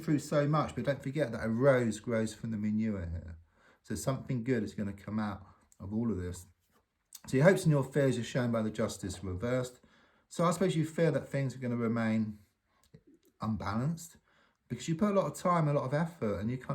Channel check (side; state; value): both; identical; correlation 1.00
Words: so much, but don't forget that a rose grows from the manure here. So something good is going to come out of all of this. So your hopes and your fears are shown by the Justice reversed. So I suppose you fear that things are going to remain unbalanced because you put a lot of time, a lot of effort, and you